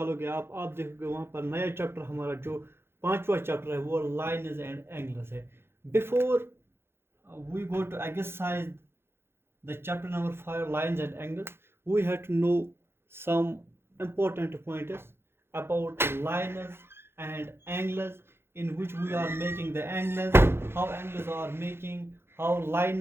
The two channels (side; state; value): left; late; 0.11 ms